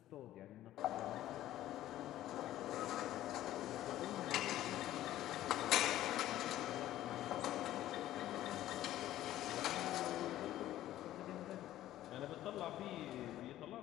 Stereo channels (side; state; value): right; quieter; 13.7 dB